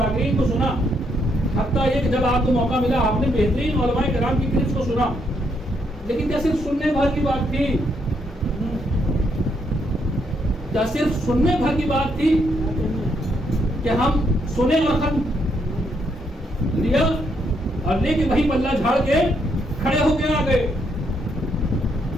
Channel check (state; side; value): normal; both; correlation 0.75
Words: کو سنا، حتیٰ یہ کہ جب آپ کو موقع ملا آپ نے بہترین علماء کرام کی کلپس کو سنا، لیکن کیا صرف سننے بھر کی بات تھی؟ کیا صرف سننے بھر کی بات تھی کہ ہم سنے اور ختم لیا اور لے کے وہی پلہ جھاڑ کے کھڑے ہو کے آ گئے؟